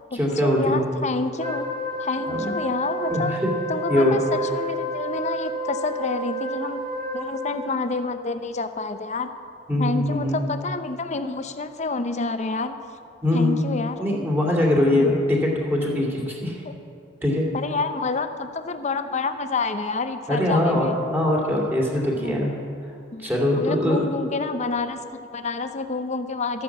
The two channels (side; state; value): both; normal; correlation 0.47